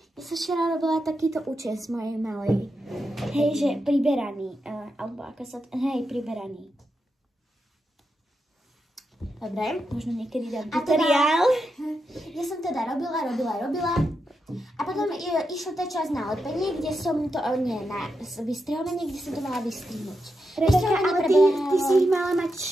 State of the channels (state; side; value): normal; both; correlation 0.86